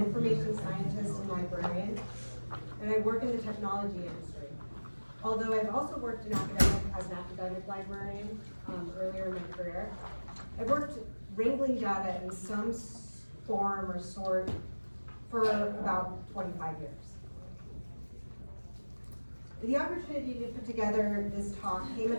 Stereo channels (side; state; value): both; inverted; correlation -1.00